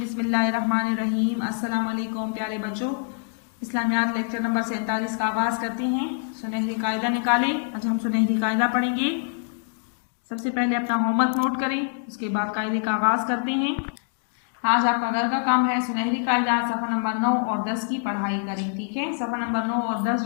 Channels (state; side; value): silent; right; 62 dB below the other